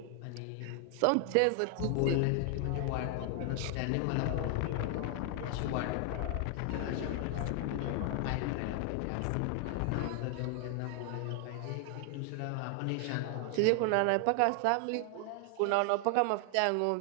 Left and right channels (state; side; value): different; both; correlation 0.00